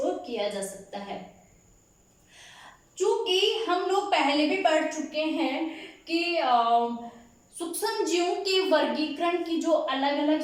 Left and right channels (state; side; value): identical; both; correlation 1.00